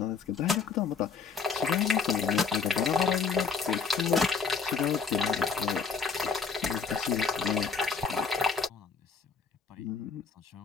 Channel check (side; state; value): right; quieter; 5.2 dB